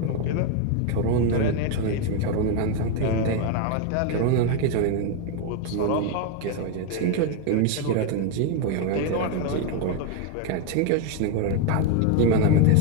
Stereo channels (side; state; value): both; different; correlation 0.01